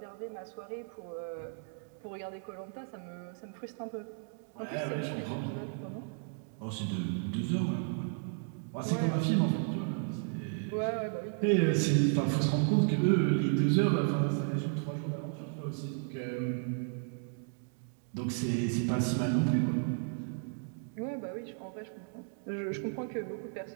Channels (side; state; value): left; silent; 55 dB below the other